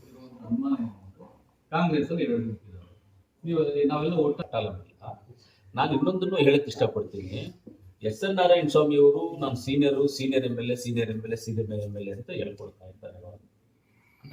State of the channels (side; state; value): both; identical; correlation 1.00